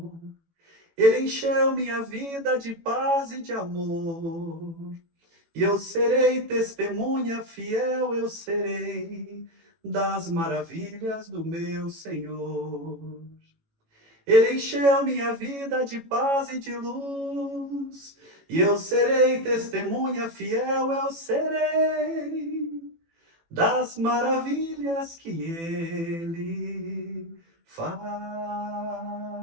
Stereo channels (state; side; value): late; left; 18 ms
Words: Ele encheu minha vida de paz e de amor. E eu serei testemunha fiel, eu serei das maravilhas do meu Senhor. Ele encheu minha vida de paz e de luz. E eu serei testemunha fiel, eu serei das maravilhas que ele